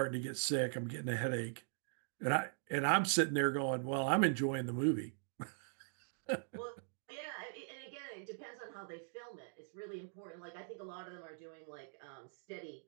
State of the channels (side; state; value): left; silent; digital silence